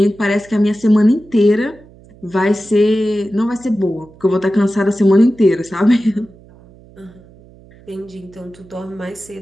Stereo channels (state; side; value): noise; right; hum, 24 dB below the sound